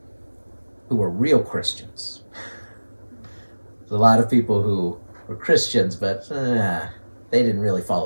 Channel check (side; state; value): both; inverted; correlation -1.00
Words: who were real Christians. There's a lot of people who were Christians, but they didn't really